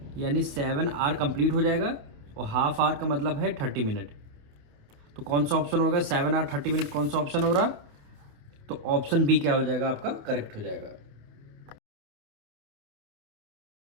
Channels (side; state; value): left; late; 28 ms